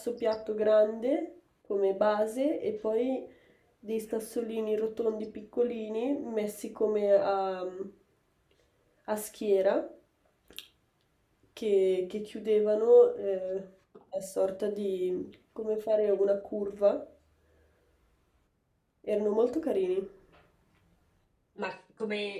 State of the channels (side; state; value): both; identical; correlation 1.00